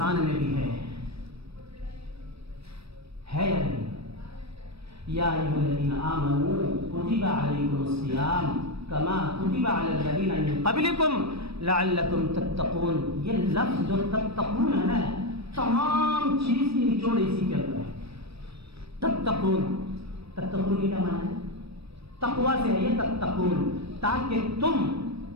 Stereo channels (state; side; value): late; left; 0.78 ms